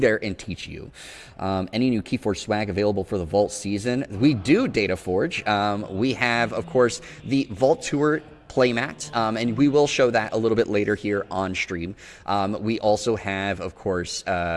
and teach you. Any new KeyForge swag available for the Vault season? We do, DataForge. We have, of course, the Vault Tour playmat, and we will show that a little bit later here on stream. We also have, of course,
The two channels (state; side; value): identical; both; correlation 1.00